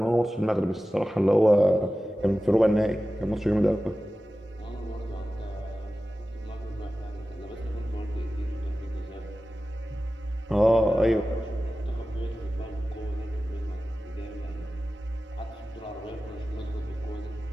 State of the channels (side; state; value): both; normal; correlation 0.95